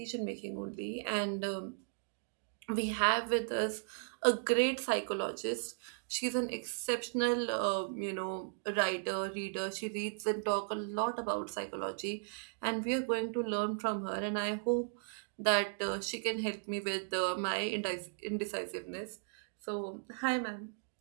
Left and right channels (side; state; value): left; silent; digital silence